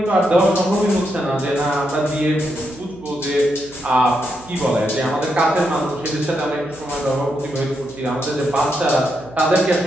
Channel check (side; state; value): right; noise; hum, 21 dB below the sound